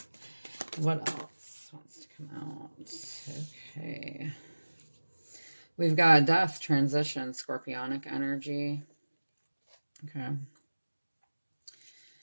What else wants to come out? Okay. We've got death, transition, scorpionic energy. Okay.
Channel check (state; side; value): inverted; both; correlation -1.00